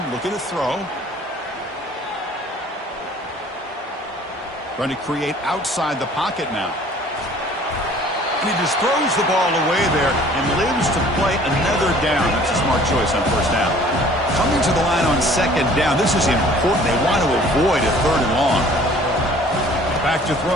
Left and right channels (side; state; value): both; normal; correlation 0.52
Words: looking to throw. Trying to create outside the pocket now. And he just throws the ball away there and lives to play another down. That's a smart choice on 1st down. Coming to the line on 2nd down. This is important. They want to avoid a 3rd and long. Back to